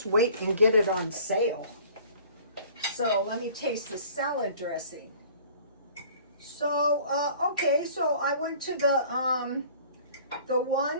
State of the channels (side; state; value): both; inverted; correlation -0.49